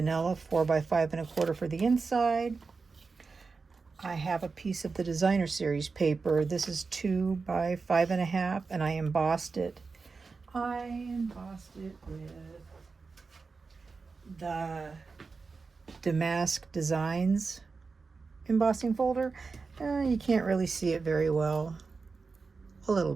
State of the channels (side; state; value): left; quieter; 4.5 dB